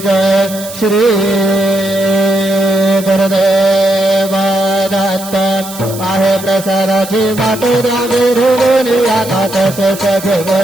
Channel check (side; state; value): right; noise; hiss, 13 dB below the sound